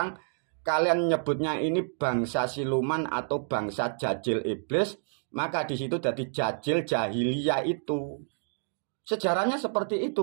kalian nyebutnya ini bangsa siluman atau bangsa jajil iblis. Maka di situ jadi jajil jahiliyah itu. Sejarahnya seperti itu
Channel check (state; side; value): silent; left; digital silence